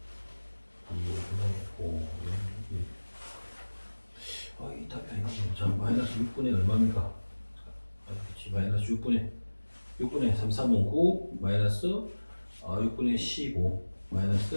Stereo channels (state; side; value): inverted; both; correlation -1.00